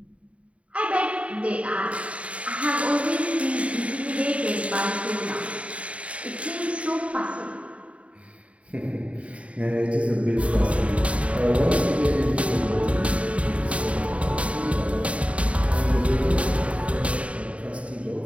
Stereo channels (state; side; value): late; left; 0.064 ms